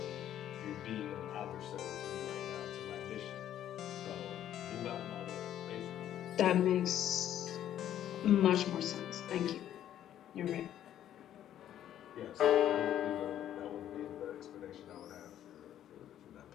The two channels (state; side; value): quieter; right; 11.2 dB